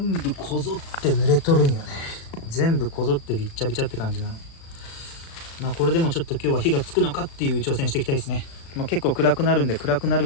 部こぞって濡れとるんよね。全部こぞってびっちゃびちゃって感じなの。これでもちょっと今日は火がつくのかっていう挑戦していきたいですね。結構暗くなるんで、暗くなる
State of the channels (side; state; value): right; late; 36 ms